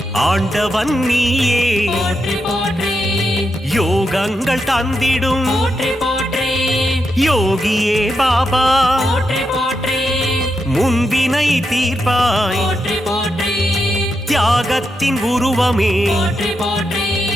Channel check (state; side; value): normal; both; correlation 0.85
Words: ஆண்டவன் நீயே போற்றி போற்றி யோகங்கள் தந்திடும் போற்றி போற்றி யோகியே பாபா போற்றி போற்றி முன்பினை தீர்ப்பாய் போற்றி போற்றி தியாகத்தின் உருவமே போற்றி போற்றி